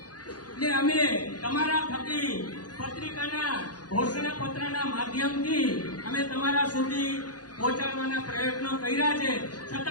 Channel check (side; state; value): right; late; 0.69 ms